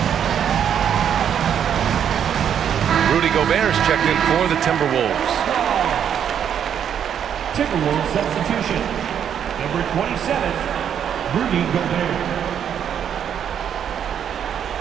Rudy Gobert is checked in for the Timberwolves. Timberwolves substitution. Number 27, Rudy Gobert.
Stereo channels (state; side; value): quieter; left; 8.8 dB